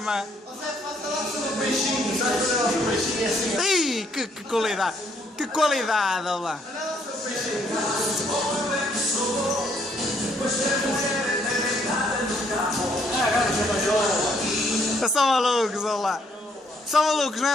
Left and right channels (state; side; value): normal; both; correlation 0.68